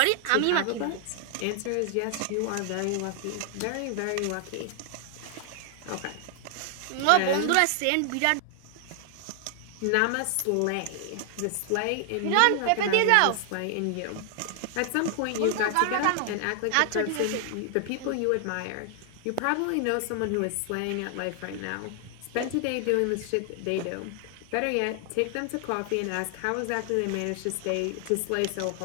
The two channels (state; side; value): different; both; correlation 0.00